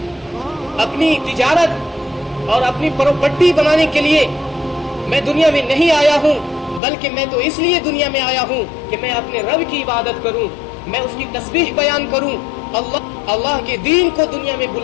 اپنی تجارت اور اپنی پراپرٹی بنانے کے لیے میں دنیا میں نہیں آیا ہوں، بلکہ میں تو اس لیے دنیا میں آیا ہوں کہ میں اپنے رب کی عبادت کروں، میں اس کی تسبیح بیان کروں، اللہ کے دین کو دنیا میں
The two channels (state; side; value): drops out; right; at 6.8 s